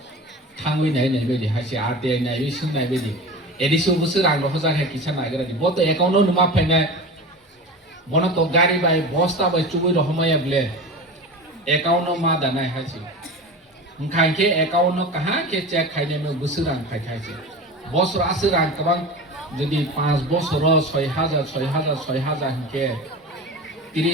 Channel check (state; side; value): normal; both; correlation 0.31